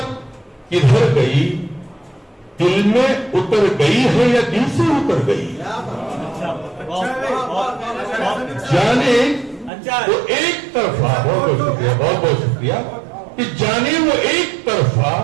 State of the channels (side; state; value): left; drops out; at 9.7 s